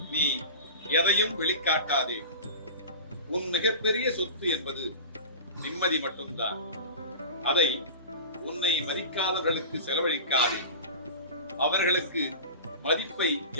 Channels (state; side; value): inverted; both; correlation -0.32